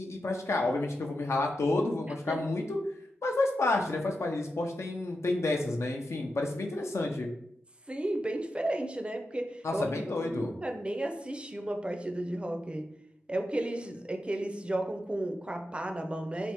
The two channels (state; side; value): normal; both; correlation 0.88